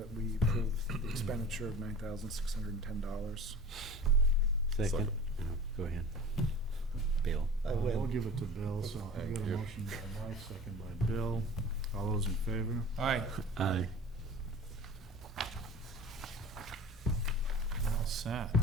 we approve the expenditure of $9,610. Second. No, go ahead. Bill. We'll give it to Bill, so I Thank got a you. motion by Mike, second by Bill. All those in favor? Aye. Aye. All set. I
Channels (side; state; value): both; normal; correlation 0.41